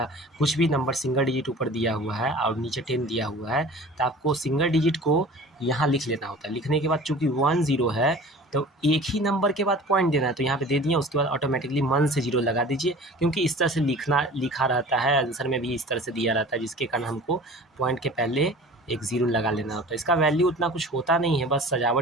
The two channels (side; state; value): both; normal; correlation 0.42